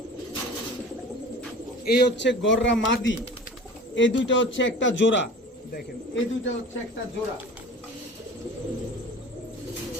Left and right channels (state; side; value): normal; both; correlation 0.40